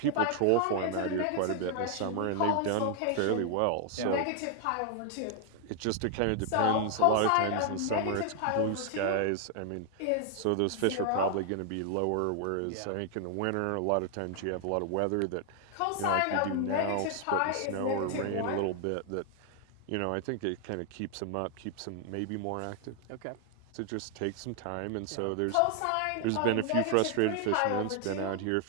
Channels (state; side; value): different; both; correlation 0.00